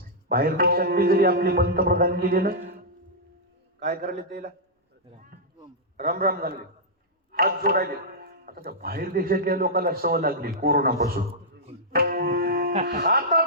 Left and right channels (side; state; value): both; normal; correlation -0.10